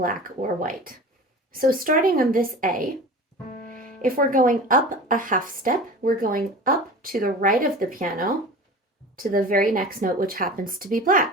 or white. So starting on this A, if we're going up a half step, we're going up to the right of the piano to the very next note, which happens to be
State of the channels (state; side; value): normal; both; correlation 0.36